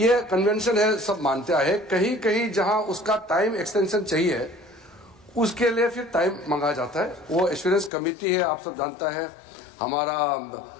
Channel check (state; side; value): drops out; right; at 7.9 s